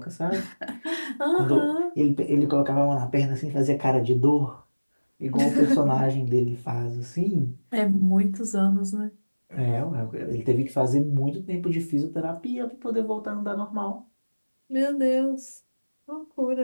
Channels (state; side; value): inverted; both; correlation -1.00